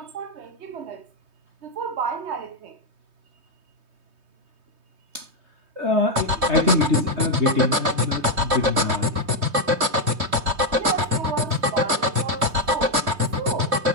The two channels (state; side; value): late; left; 3.2 ms